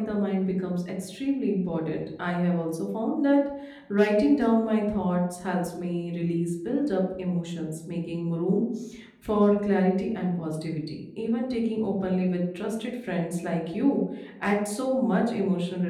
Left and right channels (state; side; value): identical; both; correlation 1.00